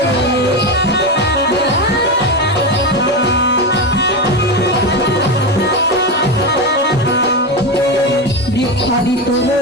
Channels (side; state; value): both; normal; correlation 0.16